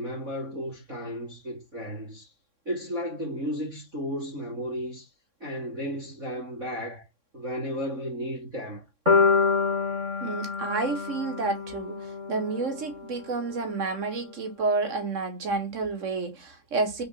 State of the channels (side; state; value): left; late; 3.6 ms